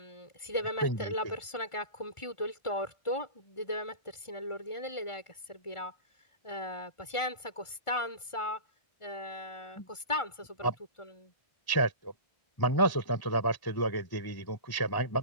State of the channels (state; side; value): late; right; 1.4 ms